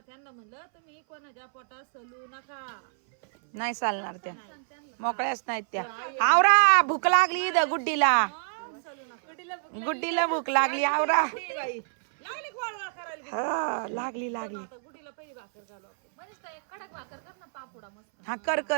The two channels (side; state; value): left; silent; 59 dB below the other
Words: त्यांना म्हणलं तुम्ही कोणाच्या पोटात सलू नका. नाही चालणार त्या, मोकळ्याच नाहीत त्या. आवरा भूक लागली इथं गुड्डीला, सलू नका. गुड्डीला भूक लागली. आवरा लागले वाळवाळ करायला. हा लागली लागली. आता गुडीला पहिली भाकर घालू आपण. म्हणजे कडक भाकर कर ना, पापुडा मस्त. हा कर